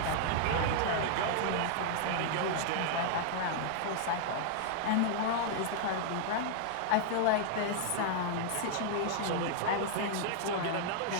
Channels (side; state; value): both; different; correlation -0.01